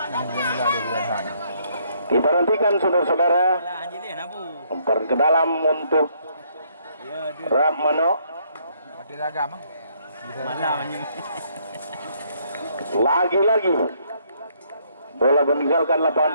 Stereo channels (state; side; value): inverted; both; correlation -0.69